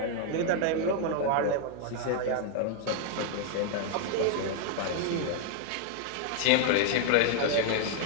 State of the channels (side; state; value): both; different; correlation 0.00